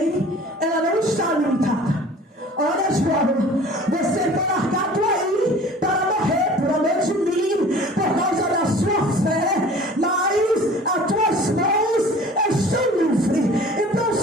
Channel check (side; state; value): both; normal; correlation 0.46